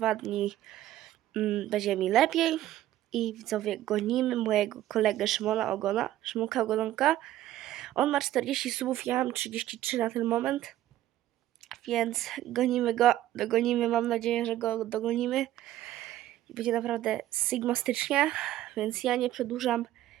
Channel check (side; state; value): left; quieter; 13.7 dB